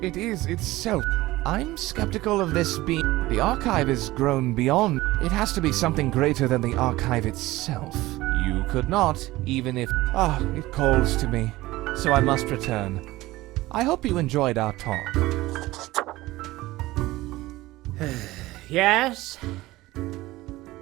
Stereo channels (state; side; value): quieter; left; 18.3 dB